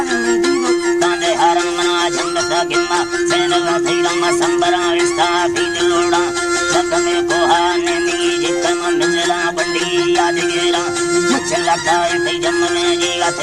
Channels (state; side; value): identical; both; correlation 1.00